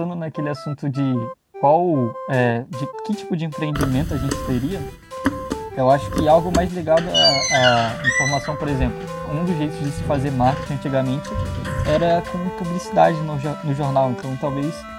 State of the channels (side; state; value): both; identical; correlation 1.00